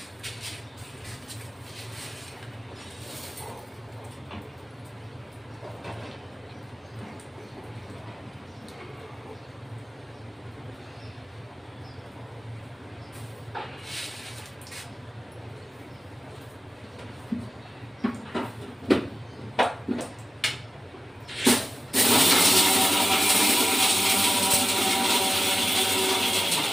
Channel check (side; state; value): both; normal; correlation 0.96